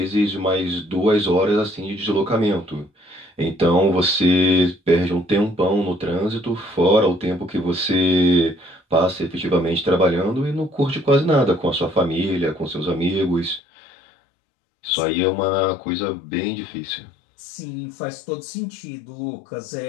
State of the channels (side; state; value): right; drops out; at 13.6 s